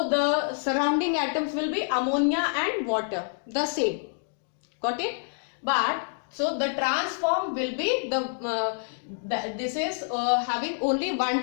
the surrounding atoms will be ammonia and water, the same, got it? But so the transform will be this is having only one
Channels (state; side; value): silent; right; digital silence